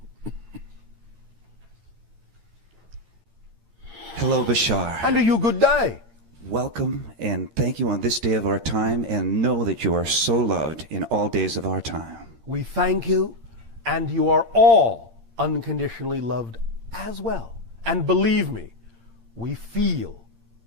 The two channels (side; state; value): left; late; 13 ms